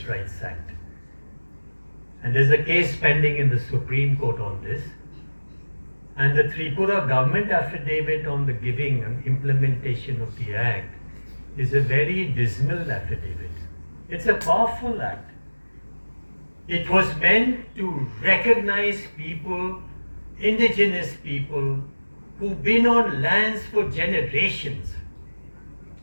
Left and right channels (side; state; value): both; inverted; correlation -1.00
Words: Rights Act, and there's a case pending in the Supreme Court on this, and the Tripura government affidavit on the giving and implementation of the act is a very dismal affidavit. It's a powerful act. It was meant to recognize people, indigenous people, who've been on lands for generations